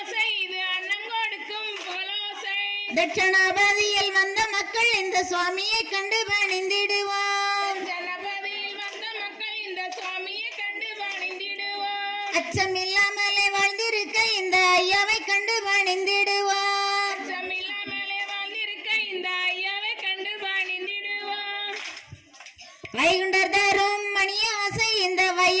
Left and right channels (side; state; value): both; identical; correlation 1.00